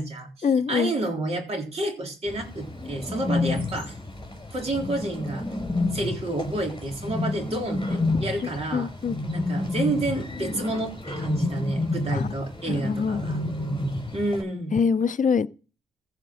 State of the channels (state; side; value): normal; both; correlation 0.71